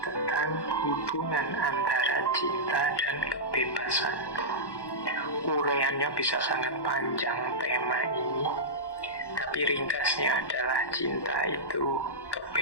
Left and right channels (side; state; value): right; late; 1.1 ms